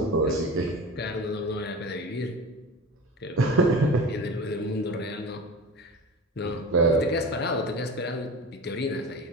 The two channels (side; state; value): both; normal; correlation 0.32